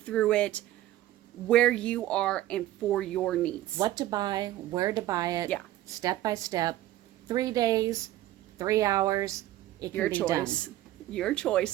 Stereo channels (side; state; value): left; quieter; 14.6 dB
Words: it where you are and for your needs. What to buy, where to buy it, step by step, 3 days, 3 hours, it can be done. Your